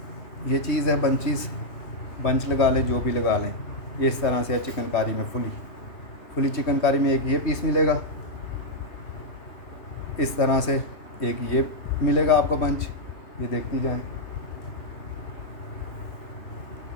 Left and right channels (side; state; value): right; late; 3.2 ms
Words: ये चीज़ है बंचीज़, बंच लगा लें, जो भी लगा लें, ये इस तरह से है चिकनकारी में, फुली चिकनकारी में एक ये पीस मिलेगा, इस तरह से एक ये मिलेगा आपको बंच, ये देखती जाएं।